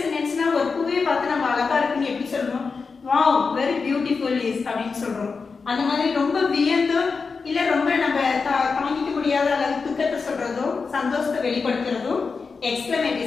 சென்டென்ஸ்னா ஒரு பூவை பார்த்து நம்ம அழகா இருக்குன்னு எப்படி சொல்றோம், வாவ் வெரி பியூட்டிஃபுல் இஸ் அப்படின்னு சொல்றோம். அந்த மாதிரி ரொம்ப வியந்து இல்ல ரொம்ப நம்ம தாங்கிக்க முடியாத அளவு துக்கத்தை சொல்றதோ சந்தோஷத்தை வெளிப்படுத்துறதோ எக்ஸ்க்ளமேட்டரி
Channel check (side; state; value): right; quieter; 4.8 dB